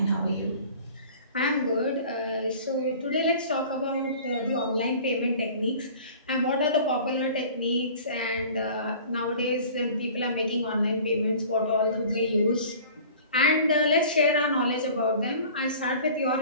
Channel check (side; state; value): both; inverted; correlation -0.45